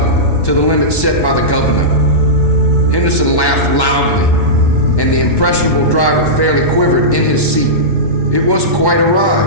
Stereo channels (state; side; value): late; right; 1.1 ms